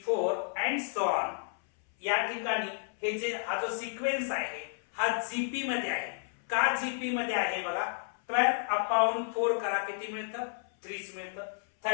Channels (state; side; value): silent; right; 57 dB below the other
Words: अँड सो ऑन. या ठिकाणी हे जे हा जो सिक्वेन्स आहे हा जीपी मध्ये आहे. का जीपी मध्ये आहे बघा, 12/4 करा किती मिळतं, 30 मिळतं.